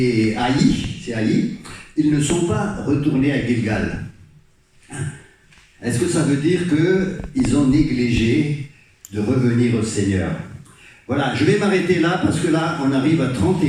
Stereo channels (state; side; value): identical; both; correlation 1.00